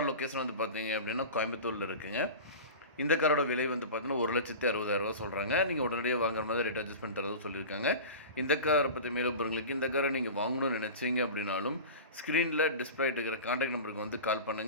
லொக்கேஷன் வந்து பார்த்தீங்க அப்படின்னா கோயம்புத்தூரில் இருக்குங்க. இந்த காரோட விலை வந்து பார்த்தீங்கன்னா 1,60,000 சொல்கிறாங்க. நீங்கள் உடனடியாக வாங்குற மாதிரி ரேட் அட்ஜஸ்ட்மெண்ட் தரதும் சொல்லியிருக்காங்க. இந்த காரை பற்றி மேலும் உங்களுக்கு இந்த காரை நீங்கள் வாங்கணும்னு நினச்சிங்க அப்படின்னாலும் ஸ்க்ரீனில் டிஸ்பிளே இருக்கிற கான்டாக்ட் நம்பருக்கு வந்து கால்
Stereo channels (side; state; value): both; inverted; correlation -0.32